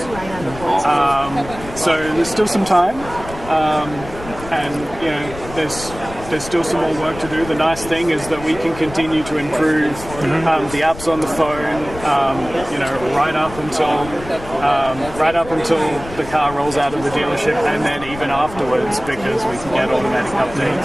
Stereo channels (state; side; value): noise; left; rumble, 14 dB below the sound